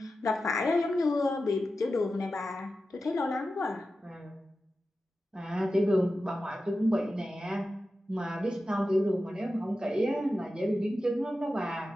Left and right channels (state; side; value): normal; both; correlation 0.92